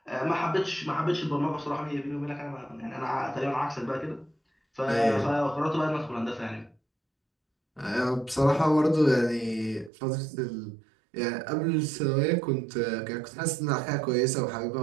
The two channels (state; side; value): drops out; left; at 9.9 s